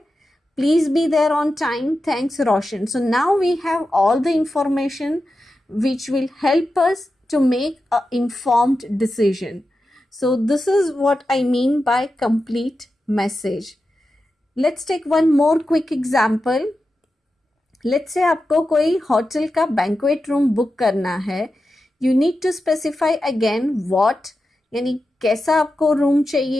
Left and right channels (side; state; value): both; normal; correlation 0.91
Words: Please be there on time. Thanks, Roshan. So now we have all the information which will help us to make an informed decision. So this is what I mean by complete message. Let's take one more quick example. Let's say आपको कोई hotel का banquet room book करना है. You need to specify again what, यानी कैसा आपको room